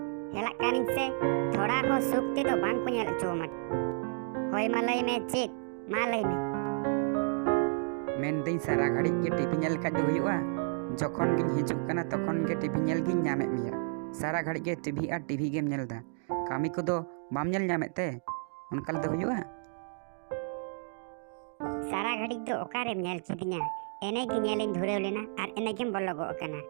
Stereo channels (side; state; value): left; silent; 57 dB below the other